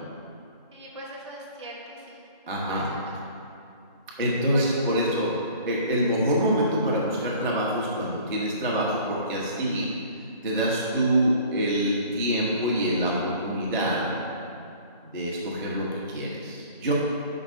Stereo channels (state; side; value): inverted; both; correlation -0.47